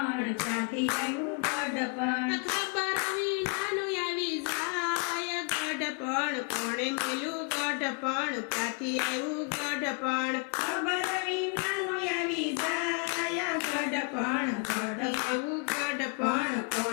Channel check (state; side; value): quieter; right; 36.4 dB